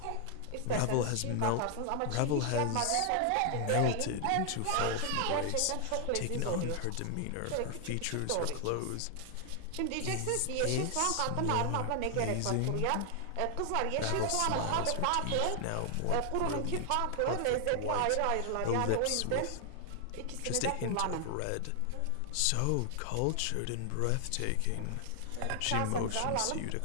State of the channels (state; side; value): different; both; correlation 0.00